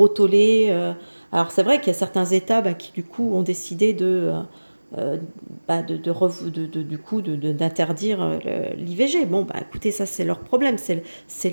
tollé. Alors c'est vrai qu'il y a certains États qui du coup ont décidé d'interdire l'IVG. Bon, écoutez, ça c'est leur problème, c'est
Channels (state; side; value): inverted; both; correlation -1.00